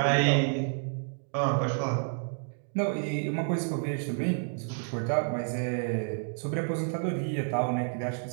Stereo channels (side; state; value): left; silent; digital silence